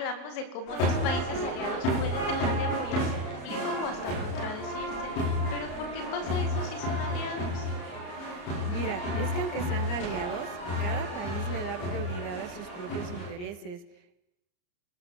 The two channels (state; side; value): late; right; 34 ms